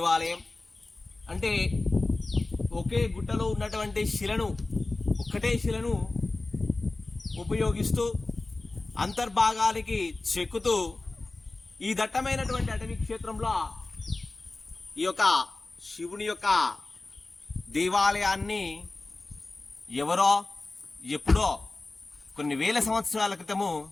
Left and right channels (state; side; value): quieter; right; 3.2 dB